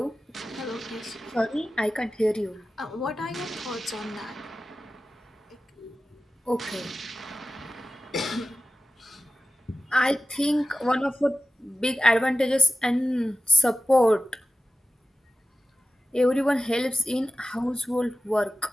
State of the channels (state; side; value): normal; both; correlation 0.95